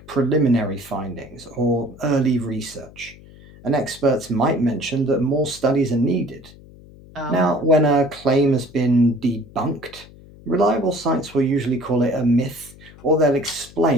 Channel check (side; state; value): left; noise; hum, 21 dB below the sound